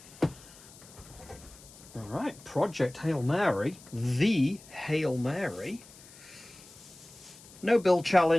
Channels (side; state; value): left; noise; hiss, 21 dB below the sound